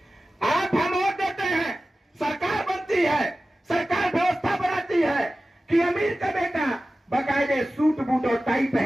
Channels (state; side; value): normal; both; correlation 0.96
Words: आप हम वोट देते हैं, सरकार बनती है, सरकार व्यवस्था बनाती है, कि अमीर का बेटा बाकायदे सूट बूट और टाई